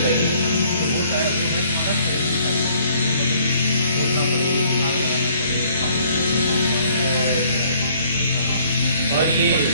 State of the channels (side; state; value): both; inverted; correlation -0.61